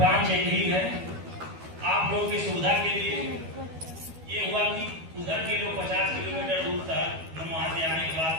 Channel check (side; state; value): left; late; 12 ms